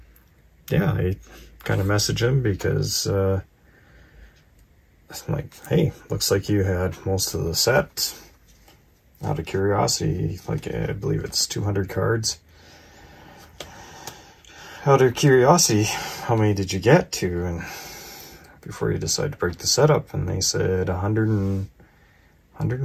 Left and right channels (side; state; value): both; identical; correlation 1.00